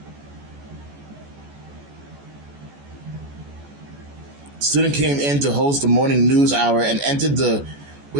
Student came in to host the morning news hour and entered the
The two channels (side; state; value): left; late; 14 ms